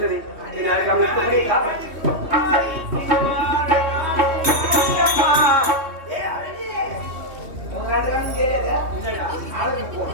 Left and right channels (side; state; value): left; late; 3.2 ms